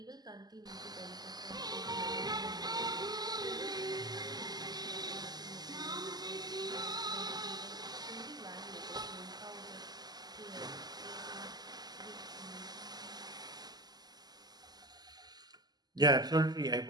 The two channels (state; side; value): late; left; 0.20 ms